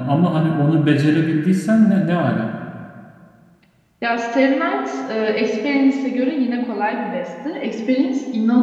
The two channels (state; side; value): identical; both; correlation 1.00